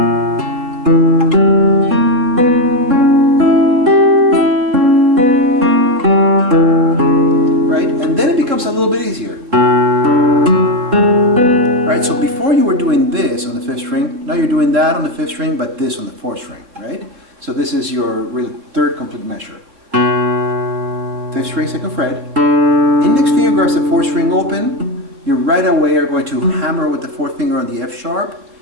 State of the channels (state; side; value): late; left; 3.8 ms